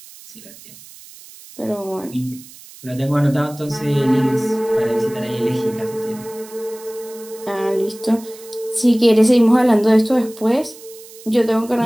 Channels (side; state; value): right; noise; hiss, 20 dB below the sound